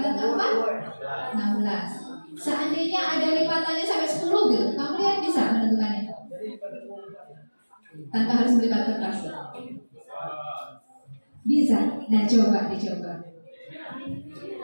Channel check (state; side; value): inverted; both; correlation -1.00